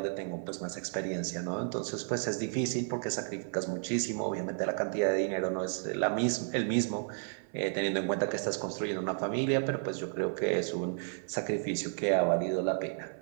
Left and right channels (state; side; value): silent; left; 56 dB below the other